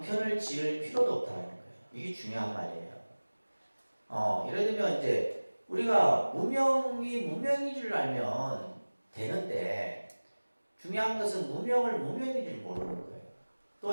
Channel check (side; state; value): both; inverted; correlation -1.00